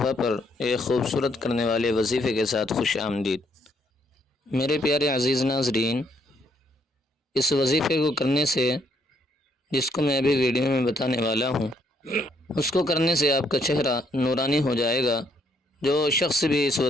پر ایک خوبصورت کرنے والے وظیفے کے ساتھ خوش آمدید۔ میرے پیارے عزیز ناظرین، اس وظیفے کو کرنے سے، جس کو میں ابھی ویڈیو میں بتانے والا ہوں، اس کو کرنے سے آپ کا چہرہ نورانی ہو جائے گا۔ جو شخص بھی اس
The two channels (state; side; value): normal; both; correlation 0.71